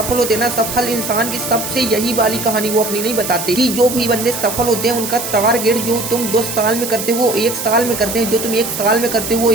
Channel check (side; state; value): right; noise; hiss, 6 dB below the sound